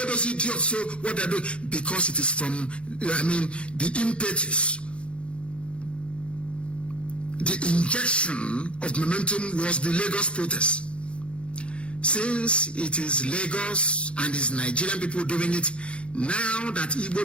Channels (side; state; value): right; late; 0.059 ms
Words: those idiots so what they're doing. Because it is from, the impetus. The injection of momentum was the Lagos protest. Since it is Lagos and it's Nigerian people doing it, now that